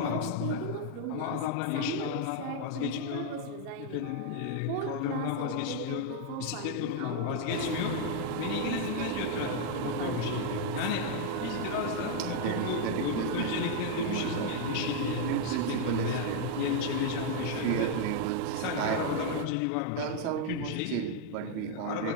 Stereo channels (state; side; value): different; both; correlation 0.00